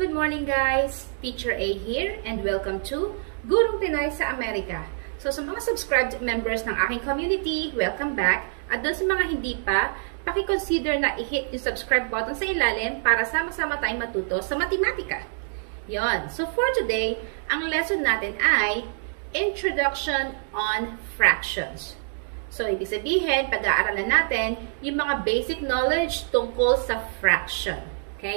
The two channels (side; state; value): left; silent; digital silence